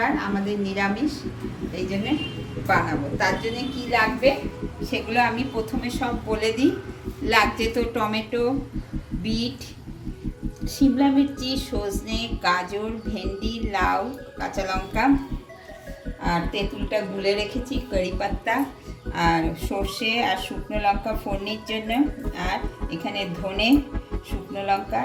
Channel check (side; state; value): both; identical; correlation 1.00